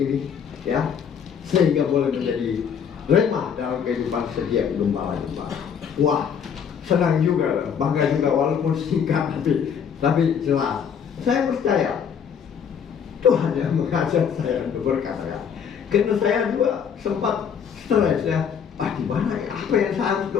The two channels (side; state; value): right; quieter; 7.4 dB